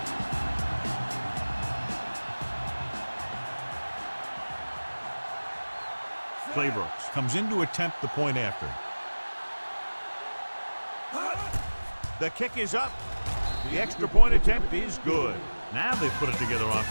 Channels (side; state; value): both; inverted; correlation -1.00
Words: Claybrooks comes in to attempt the point after. The kick is up. The extra point attempt is good. Now they've put it together